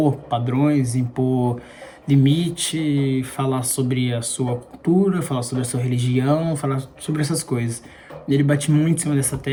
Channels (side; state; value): both; identical; correlation 1.00